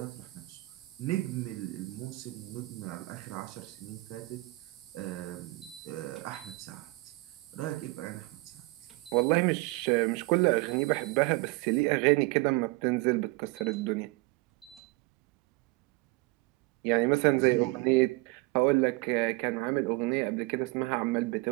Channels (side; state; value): left; quieter; 23.4 dB